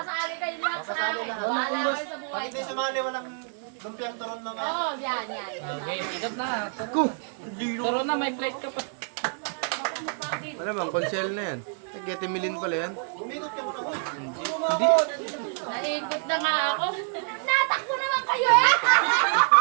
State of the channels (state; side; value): silent; left; 60 dB below the other